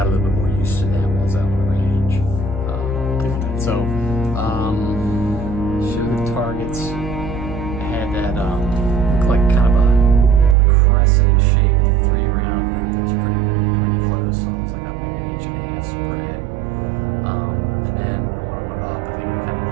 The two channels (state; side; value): drops out; left; at 10.6 s